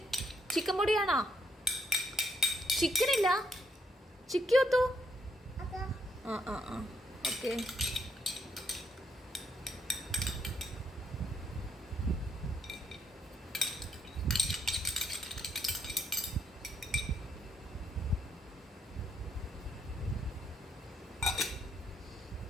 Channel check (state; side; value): normal; both; correlation 0.74